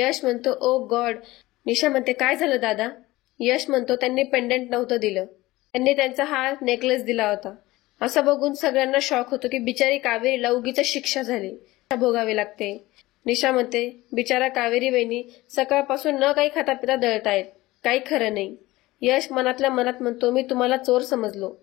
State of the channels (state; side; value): quieter; right; 18.8 dB